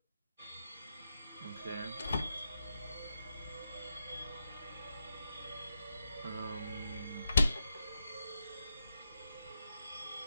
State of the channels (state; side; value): inverted; both; correlation -0.84